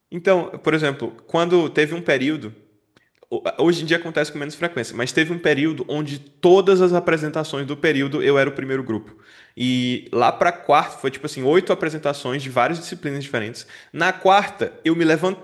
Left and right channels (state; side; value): identical; both; correlation 1.00